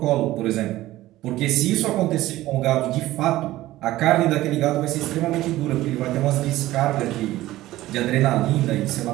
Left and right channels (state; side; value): quieter; left; 16.1 dB